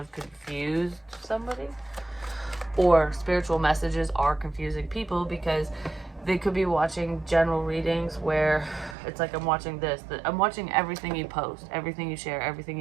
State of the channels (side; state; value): left; drops out; at 9.0 s